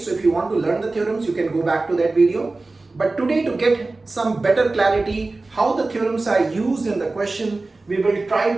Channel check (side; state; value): left; quieter; 3.3 dB